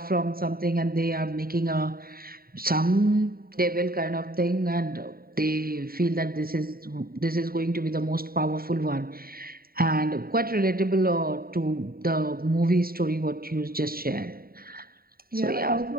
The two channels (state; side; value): late; left; 0.43 ms